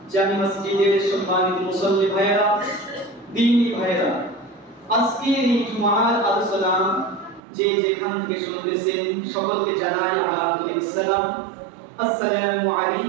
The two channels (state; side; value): drops out; left; at 7.4 s